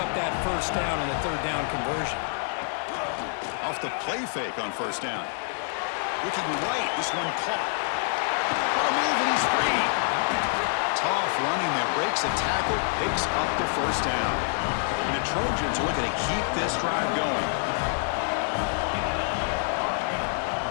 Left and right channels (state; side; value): silent; right; 60 dB below the other